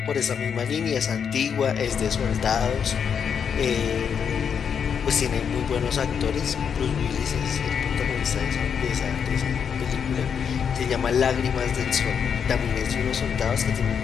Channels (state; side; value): quieter; right; 7.2 dB